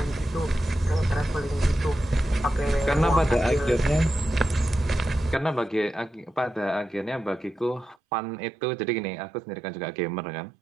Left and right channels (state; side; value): drops out; left; at 8.0 s